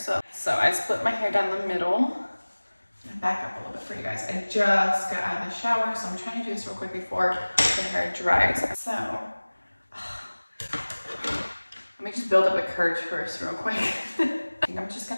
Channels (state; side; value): inverted; both; correlation -1.00